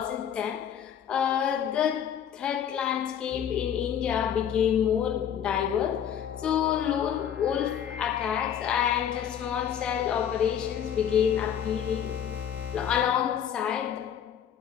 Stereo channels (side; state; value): right; quieter; 9.0 dB